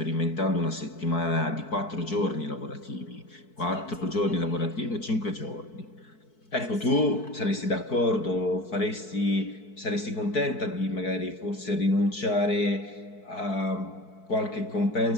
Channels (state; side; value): late; right; 4.6 ms